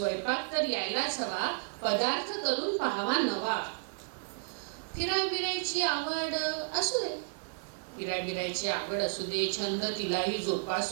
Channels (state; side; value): silent; left; digital silence